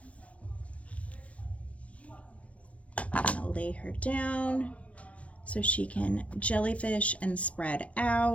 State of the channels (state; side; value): late; right; 0.064 ms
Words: I'm gonna lay her down so she can jellyfish and spread